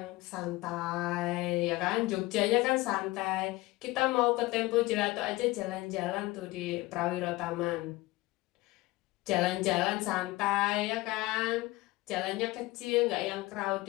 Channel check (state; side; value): quieter; right; 19.8 dB